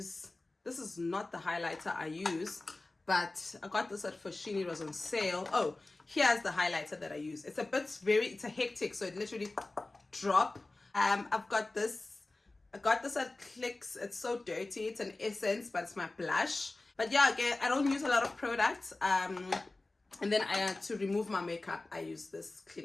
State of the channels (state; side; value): quieter; right; 3.0 dB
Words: is not the highlighter I use, but I got this at Foschini. It was on sale. Oh, here's the highlighter that I use. It's a hectic, so it literally drop. I've got this. I got this at Clicks. It's so dirty. It's an essence, but it's my blush. But yeah, again, I don't use a lot of products. And then to remove my makeup, I use this